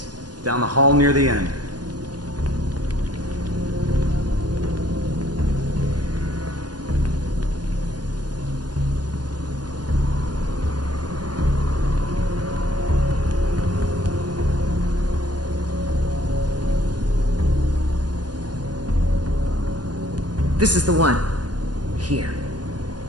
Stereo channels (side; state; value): left; late; 0.69 ms